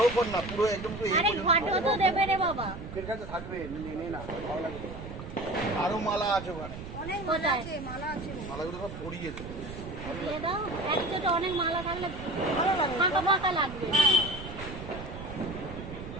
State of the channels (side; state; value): right; noise; rumble, 11 dB below the sound